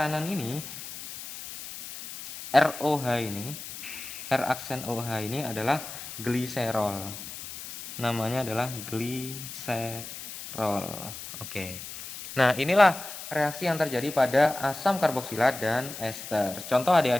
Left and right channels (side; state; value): left; noise; hiss, 11 dB below the sound